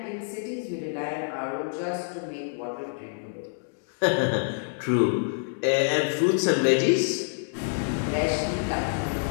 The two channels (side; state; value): right; silent; digital silence